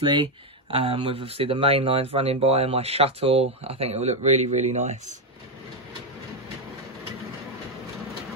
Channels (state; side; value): normal; both; correlation 0.05